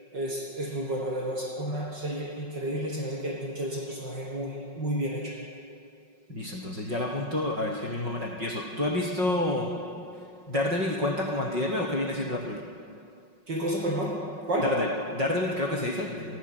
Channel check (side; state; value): left; late; 5.4 ms